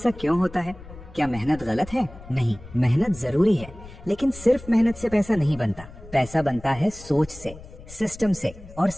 क्यों होता है? क्या मेहनत गलत है? नहीं, मेहनत जरूरी है, लेकिन सिर्फ मेहनत से पैसा नहीं बनता। पैसा बनता है सोच से, सिस्टम से और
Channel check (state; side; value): noise; left; rumble, 18 dB below the sound